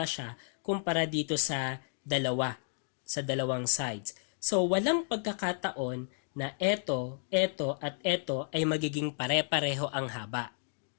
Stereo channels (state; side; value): silent; right; digital silence